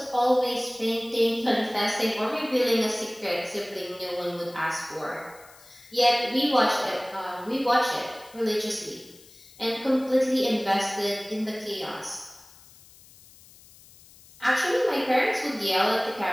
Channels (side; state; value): left; noise; hiss, 24 dB below the sound